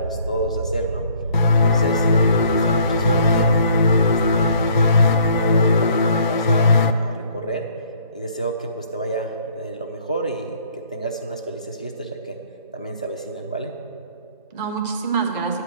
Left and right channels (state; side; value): inverted; both; correlation -0.60